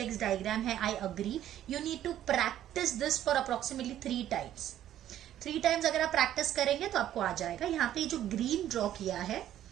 डायग्राम है। I agree, you need to practise this for approximately 3 times अगर आप प्रैक्टिस करेंगे तो आपको आ जाएगा। यहाँ पे जो ग्रीन ड्रॉ किया है,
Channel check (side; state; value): left; quieter; 11.9 dB